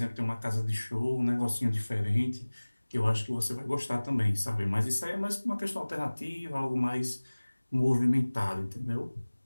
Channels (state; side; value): inverted; both; correlation -1.00